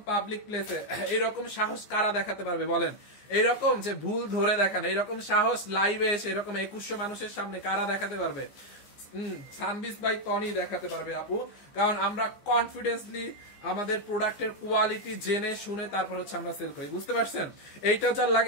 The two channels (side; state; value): right; late; 14 ms